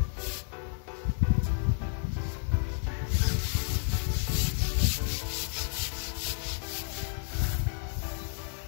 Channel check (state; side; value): silent; right; digital silence